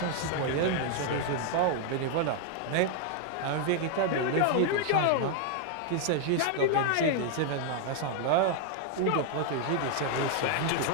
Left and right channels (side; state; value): both; different; correlation 0.00